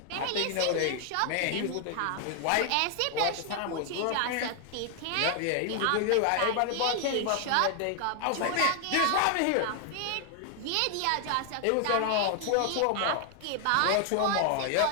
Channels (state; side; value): different; both; correlation 0.00